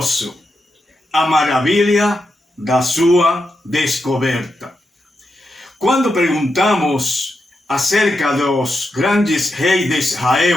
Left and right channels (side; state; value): both; normal; correlation 0.86